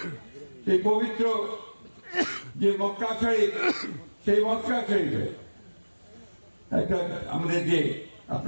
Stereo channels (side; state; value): both; inverted; correlation -1.00